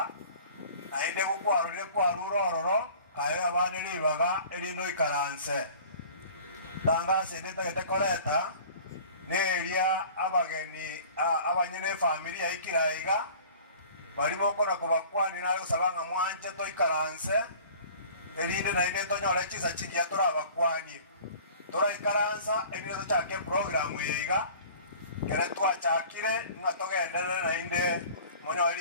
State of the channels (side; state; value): both; inverted; correlation -0.45